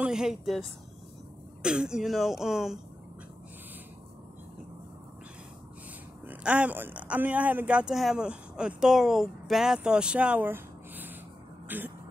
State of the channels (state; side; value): normal; both; correlation 0.91